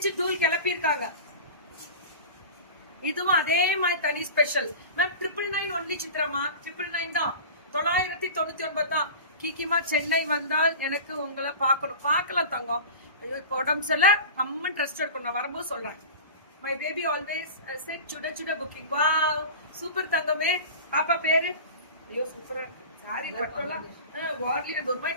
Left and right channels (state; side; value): inverted; both; correlation -0.34